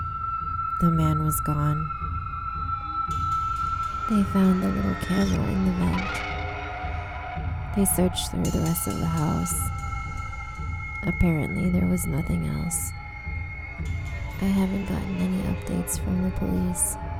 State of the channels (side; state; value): both; identical; correlation 1.00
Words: the man was gone. They found the little camera in the vent. They searched through the rest of the house. Apparently, there was nothing else. I haven't gotten any updates from the police.